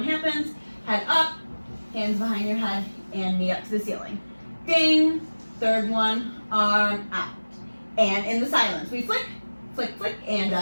happens, head up, hands behind your head, and knee up to the ceiling. Ding, third one, arm out. And in the silence, we flick, flick, flick, and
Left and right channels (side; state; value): both; inverted; correlation -1.00